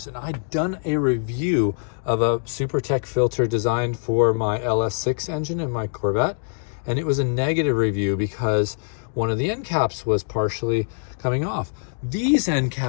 And I'd done a review of a SuperTech filter designed for my LS6 engine in my Corvette. And it was a negative review because one of the end caps was partially coming off. These end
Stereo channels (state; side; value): silent; right; digital silence